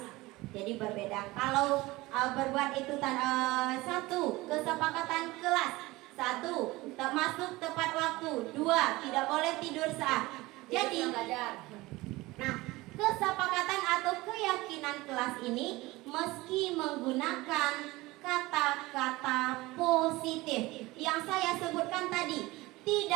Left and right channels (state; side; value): quieter; left; 20.4 dB